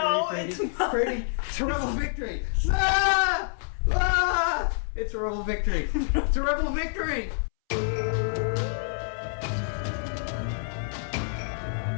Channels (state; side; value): silent; right; 60 dB below the other